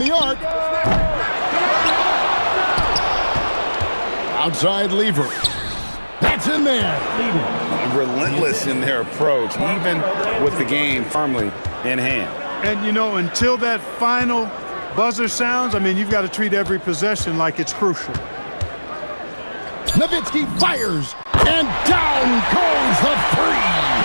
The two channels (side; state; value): both; inverted; correlation -1.00